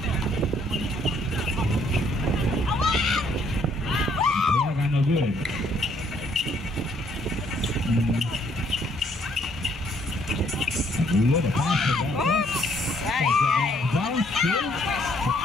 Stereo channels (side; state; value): both; normal; correlation 0.67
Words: Kaya no good. Good, a pass to that. Ay, ay. Down, still.